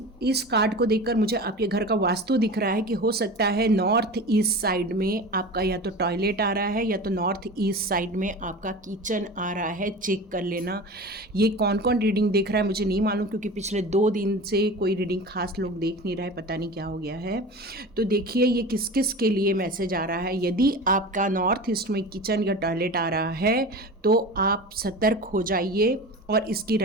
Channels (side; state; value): both; normal; correlation 0.33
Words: कार्ड को देखकर मुझे आपके घर का वास्तु दिख रहा है कि हो सकता है नॉर्थ ईस्ट साइड में आपका या तो टॉयलेट आ रहा है या तो नॉर्थ ईस्ट साइड में आपका किचन आ रहा है। चेक कर लेना। ये कौन कौन रीडिंग देख रहा है मुझे नहीं मालूम, क्योंकि पिछले 2 दिन से कोई रीडिंग खास लोग देख नहीं रहे, पता नहीं क्या हो गया है। तो देखिए ये किस किस के लिए मैसेज आ रहा है। यदि आपका नॉर्थ ईस्ट में किचन या टॉयलेट आ रहा है तो आप सतर्क हो जाइए, और इसकी